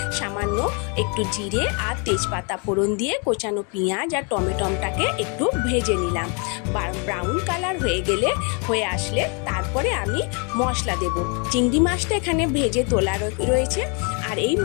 সামান্য একটু জিরে আর তেজপাতা ফোড়ন দিয়ে কোচানো পেঁয়াজ আর টমেটোটাকে একটু ভেজে নিলাম। ব্রাউন কালার হয়ে আসলে তারপরে আমি মশলা দেব। চিংড়ি মাছটা এখানে ভেজে তোলা রয়েছে, আর এই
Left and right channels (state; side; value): quieter; right; 35.4 dB